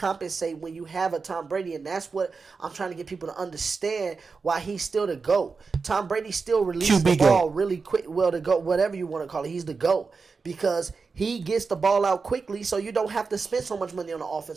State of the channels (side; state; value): left; quieter; 4.7 dB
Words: when you have a Tom Brady. And that's what I'm trying to get people to understand why he's still the GOAT. Tom Brady still releases the ball really quick. Well, the GOAT, whatever you want to call it, he's the GOAT. Because he gets the ball out quickly, so you don't have to spend so much money on the